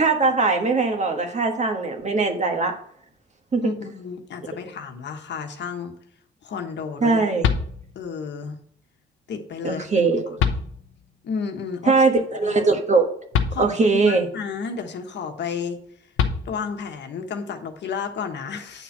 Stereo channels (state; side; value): normal; both; correlation 0.41